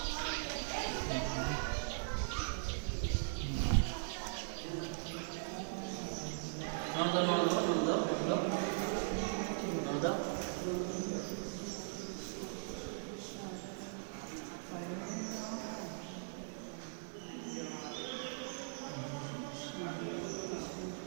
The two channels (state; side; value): silent; left; digital silence